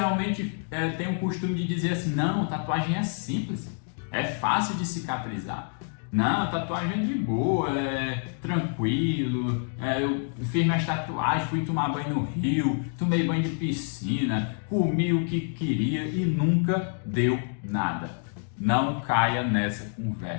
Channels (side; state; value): right; silent; 59 dB below the other